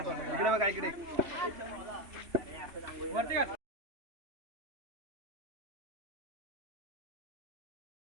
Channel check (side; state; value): left; late; 3.1 ms